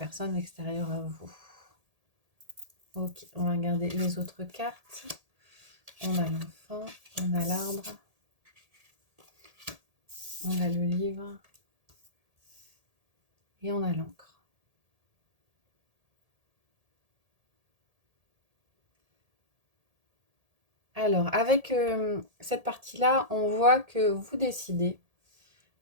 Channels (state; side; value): late; left; 1.8 ms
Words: extérieure à vous. Ok, on va regarder les autres cartes. On a l'enfant, on a l'arbre, on a le livre et on a l'encre. Alors, avec cette partie-là, on voit que vous décidez,